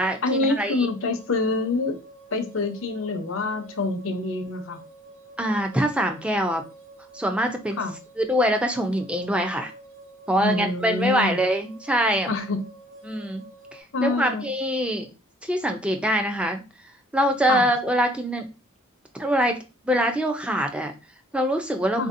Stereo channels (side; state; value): both; normal; correlation 0.57